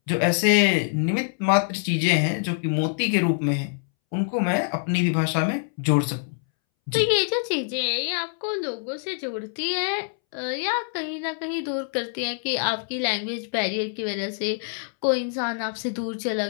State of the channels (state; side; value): silent; right; 62 dB below the other